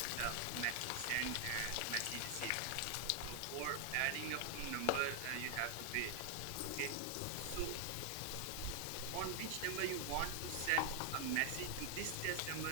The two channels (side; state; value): both; different; correlation 0.00